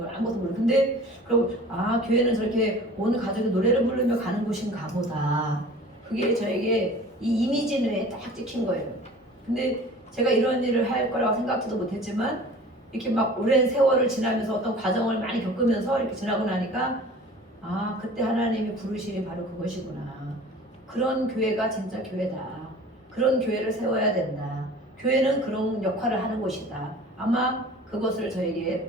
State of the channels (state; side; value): normal; both; correlation 0.43